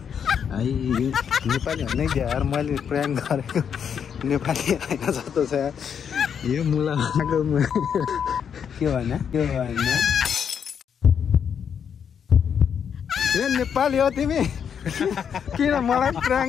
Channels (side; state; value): right; quieter; 7.7 dB